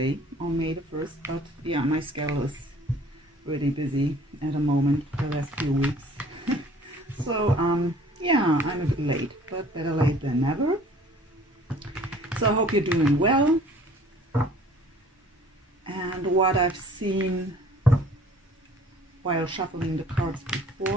on May the 1st, but yeah, my schedule is really busy at the moment for the last few weeks. So yeah, I'm a bit late, but better late than never. So I hope you're doing well. And what I've seen while shuffling the cards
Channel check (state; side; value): normal; both; correlation 0.52